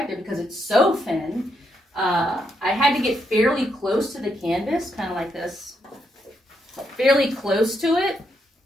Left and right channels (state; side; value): normal; both; correlation 0.79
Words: because it's so thin, I had to get fairly close to the canvas, kind of like this, fairly close to it.